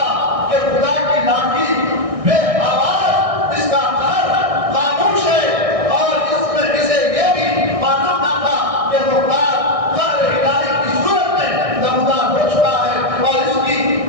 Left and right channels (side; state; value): left; late; 1.6 ms